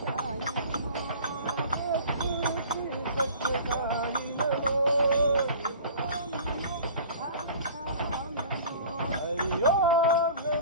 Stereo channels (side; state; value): both; inverted; correlation -0.43